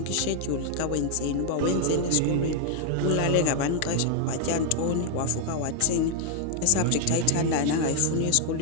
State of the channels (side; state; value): both; different; correlation 0.00